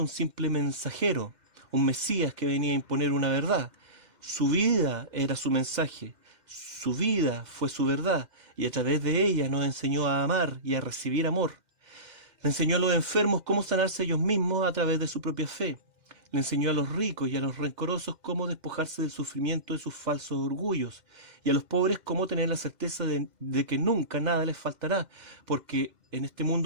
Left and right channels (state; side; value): late; left; 2.0 ms